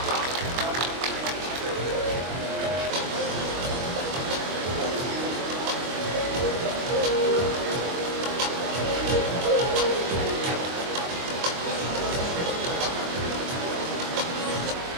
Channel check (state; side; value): late; left; 23 ms